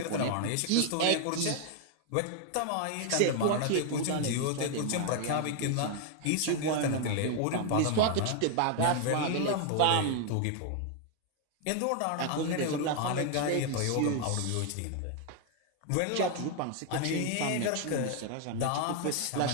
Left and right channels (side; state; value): both; different; correlation 0.00